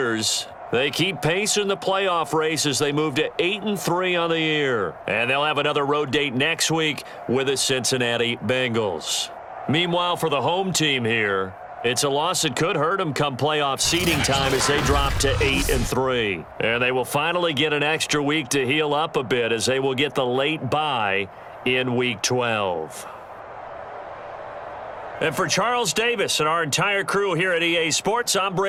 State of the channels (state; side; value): identical; both; correlation 1.00